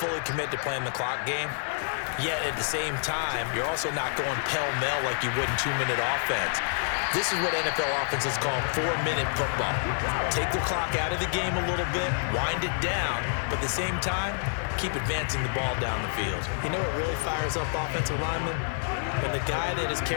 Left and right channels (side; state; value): right; silent; digital silence